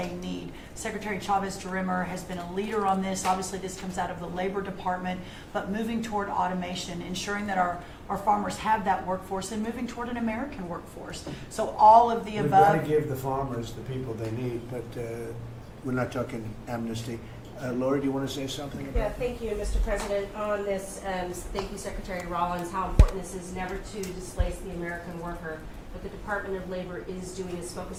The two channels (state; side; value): identical; both; correlation 1.00